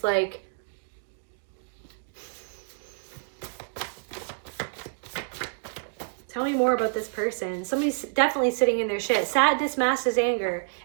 like tell me more about this person. Somebody's definitely sitting in their shit. Sadness masks as anger.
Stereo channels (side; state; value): left; quieter; 36.3 dB